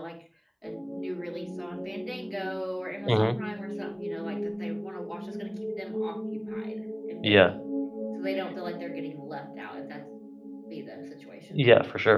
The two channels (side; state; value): both; identical; correlation 1.00